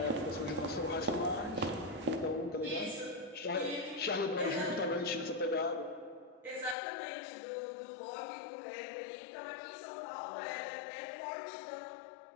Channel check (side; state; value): right; drops out; at 6.8 s